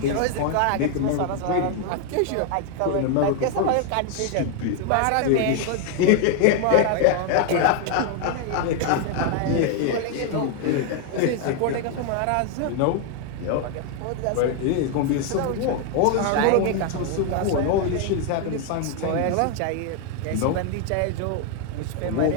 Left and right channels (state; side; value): different; both; correlation 0.00